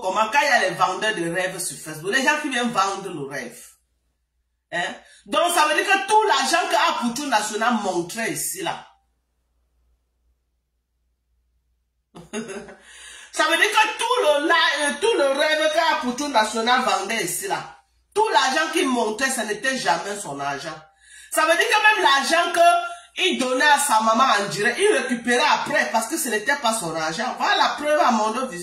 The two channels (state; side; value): identical; both; correlation 1.00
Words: comment quand il y a les vendeurs de rêves sur Facebook. Les gens qui viennent vendre le rêve. Hein? Donc ça veut dire que tout l'argent que Apoutou National montrait ici là. Ça veut dire que tout le rêve qu'Apoutou National vendait ici là. Tout l'argent qu'il montrait, ce n'était jamais son argent. Ça veut dire que même l'argent qu'il donnait à sa maman en direct, il récupérait après parce que ce n'était pas son argent. Voilà la preuve à